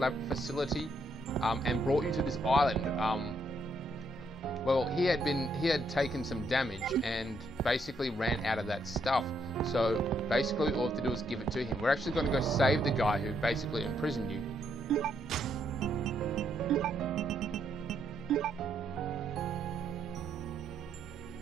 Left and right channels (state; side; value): normal; both; correlation 0.75